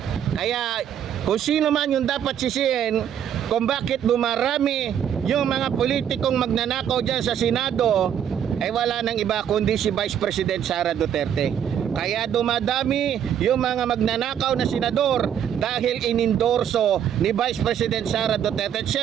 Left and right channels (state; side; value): quieter; left; 9.3 dB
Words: Kaya kung sino man yung dapat sisihin kung bakit dumarami yung mga politikong magnanakaw dyan sa Senado, ay wala nang iba kundi si Vice President Sara Duterte. Kaya dumadami yung mga magnanakaw na senador dahil inendorso ni Vice President Sara Duterte. At